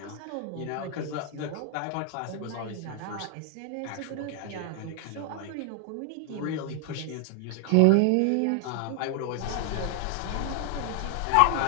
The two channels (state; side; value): different; both; correlation 0.00